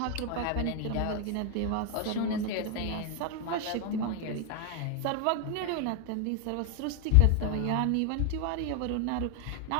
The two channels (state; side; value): different; both; correlation 0.00